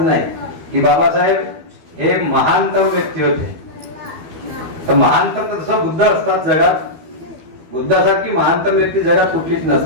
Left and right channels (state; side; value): late; left; 12 ms